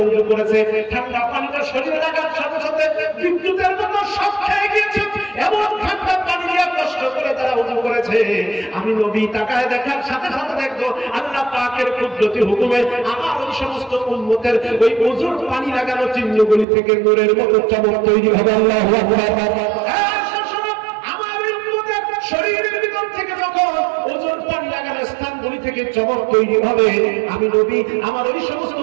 উযু করেছে, ঠান্ডা পানিটা শরীরে লাগার সাথে সাথে বিদ্যুতের মতো শক খেয়ে গিয়েছে, এমন ঠান্ডা পানি দিয়া কষ্ট করে তারা উযু করেছে, আমি নবী তাকায় দেখার সাথে সাথে দেখবো আল্লাহ পাকের কুদরতি হুকুমে আমার ওই সমস্ত উম্মতের ওই উযুর পানি লাগানো চিহ্নগুলি থেকে নূরের মতো চমক তৈরি হবে। আল্লাহু আকবার। আমার উম্মতের শরীরের ভিতর থেকে যখন উযুর পানি লাগানো স্থানগুলি থেকে চমক তৈরি হবে। আমি নবী আমার ওই সমস্ত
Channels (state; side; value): drops out; left; at 16.7 s